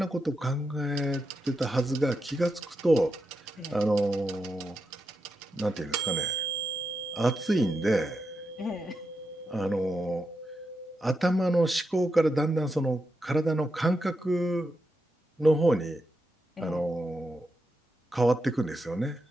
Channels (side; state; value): both; normal; correlation 0.86